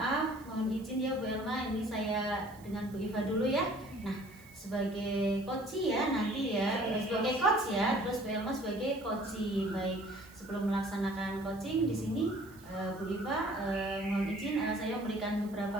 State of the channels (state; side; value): noise; right; hiss, 24 dB below the sound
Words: mohon izin ya Bu Elma, ini saya dengan Bu Iva dulu ya. Nah, sebagai coach ya nanti ya, sebagai coach ya, terus Bu Elma sebagai coach. Baik, sebelum melaksanakan coaching di sini Bu Iva mohon izin saya memberikan